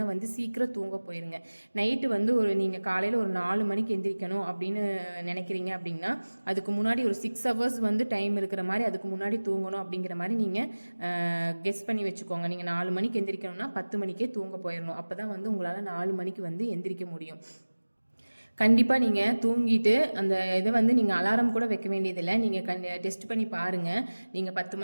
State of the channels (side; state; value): both; inverted; correlation -1.00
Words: வந்து சீக்கிரம் தூங்க போயிருங்க. நைட்டு வந்து நீங்கள் காலையில் ஒரு 4 மணிக்கு எந்திரிக்கணும் அப்படின்னு நினைக்கிறீங்க அப்படின்னா அதுக்கு முன்னாடி ஒரு 6 hours வந்து டைம் இருக்கிற மாதிரி அதுக்கு முன்னாடி தூங்கணும் அப்படிங்கிற மாதிரி நீங்கள் கெஸ் பண்ணி வச்சுக்கோங்க. நீங்கள் 4 மணிக்கு எந்திரிக்கணும்னா 10 மணிக்கே தூங்க போயிடணும். அப்போ தான் வந்து உங்களால் 4 மணிக்கு வந்து எந்திரிக்க முடியும். கண்டிப்பாக நீங்கள் தூங்கிட்டு அந்த இதை வந்து நீங்கள் அலாரம் கூட வைக்க வேண்டியதில்லை. நீங்கள் டெஸ்ட் பண்ணி பாருங்கள். நீங்கள் 10